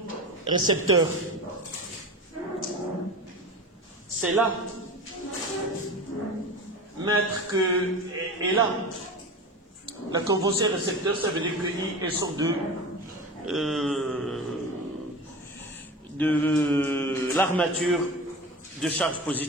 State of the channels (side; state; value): both; normal; correlation 0.30